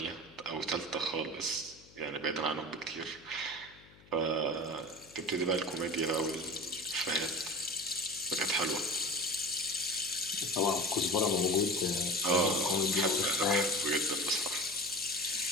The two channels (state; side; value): noise; left; hum, 25 dB below the sound